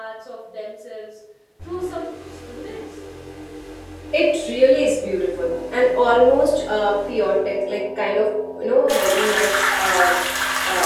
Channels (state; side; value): identical; both; correlation 1.00